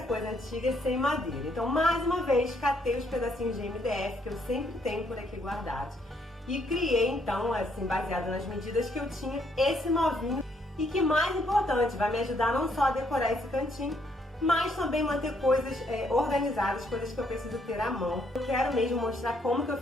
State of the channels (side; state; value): both; normal; correlation 0.70